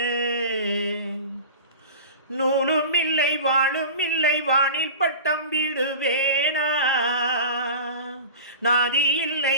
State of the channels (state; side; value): inverted; both; correlation -0.35